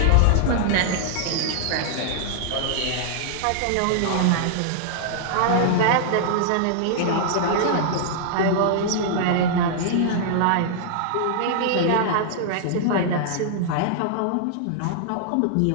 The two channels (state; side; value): different; both; correlation -0.01